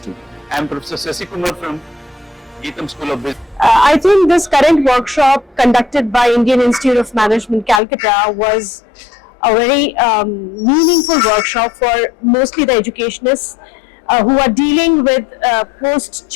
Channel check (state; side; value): drops out; right; at 7.8 s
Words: I am Professor Sasikumar from Geetham School of Business. I think this current workshop conducted by Indian Institute of Management, Calcutta was a very meaningful workshop for mostly the educationists who are dealing with